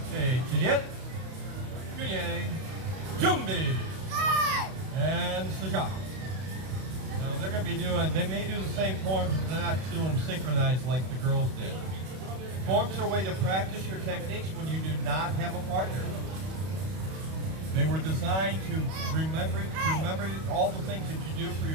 Okay, Chidit, Kunye, Jumbi, and Sajak. Now they're going to be doing, they may do the same forms, but they're not doing synchronized like the girls did. Forms are a way to practice your techniques when you do not have a partner. They were designed to remember all the things that you do for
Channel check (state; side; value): late; left; 32 ms